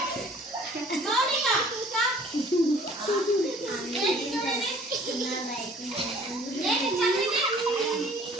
Mounika కా. ఏంటి చూడండి, ఏంటి చదివింది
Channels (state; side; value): normal; both; correlation 0.53